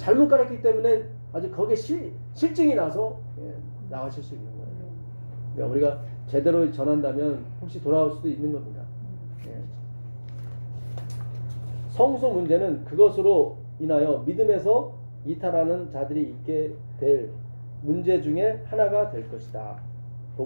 잘못 가르쳤기 때문에 아주 거기에 실증이 나서 나가실 수 있는 거예요. 그러니까 우리가 제대로 전한다면 혹시 돌아올 수도 있는 겁니다. 예. 성소 문제는 그것으로 인하여 믿음에서 이탈하는 자들이 있게 될 문제 중에 하나가 될 것이다.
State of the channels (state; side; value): inverted; both; correlation -1.00